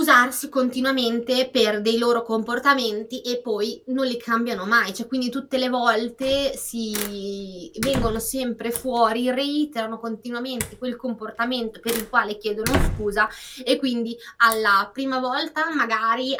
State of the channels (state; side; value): identical; both; correlation 1.00